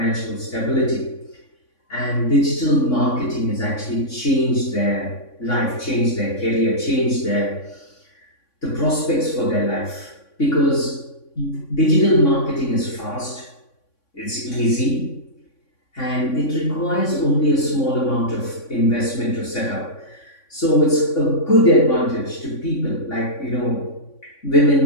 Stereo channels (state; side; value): late; right; 3.6 ms